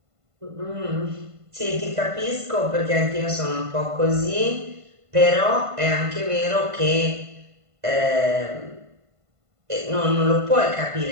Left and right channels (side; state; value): left; late; 1.5 ms